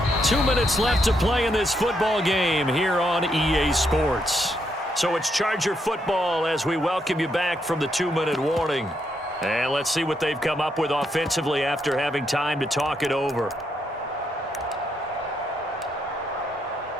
2 minutes left to play in this football game here on EA Sports. So it's Charger football as we welcome you back from the 2-minute warning. And let's see what they've come up with offensively after having time to talk it over.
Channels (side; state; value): both; normal; correlation 0.78